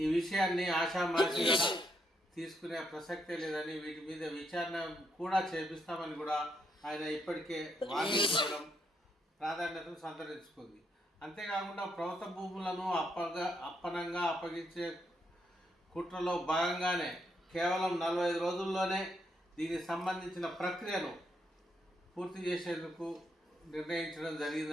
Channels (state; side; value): normal; both; correlation 0.77